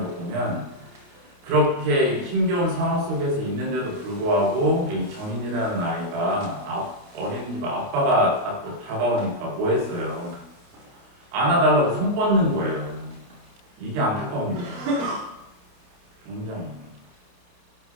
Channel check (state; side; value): late; left; 28 ms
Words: 거 보면 그렇게 힘겨운 상황 속에서 있는데도 불구하고 이 정인이라는 아이가 어린이집 아빠가 다가오니까 뭐 했어요? 안아달라고 손 뻗는 거예요. 이게 안타까운 일이에요. 굉장히